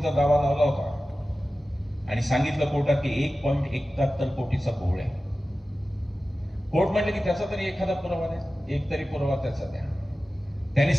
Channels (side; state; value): both; normal; correlation 0.95